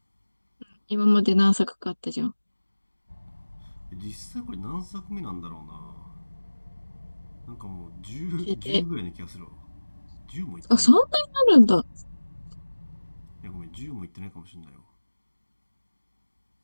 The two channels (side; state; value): both; inverted; correlation -1.00